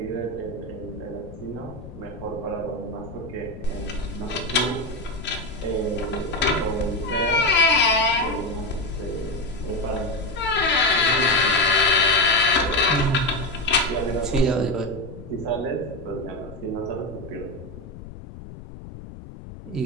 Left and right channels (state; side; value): noise; left; rumble, 14 dB below the sound